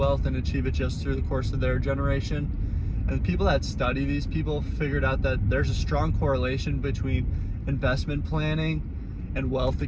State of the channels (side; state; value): both; identical; correlation 1.00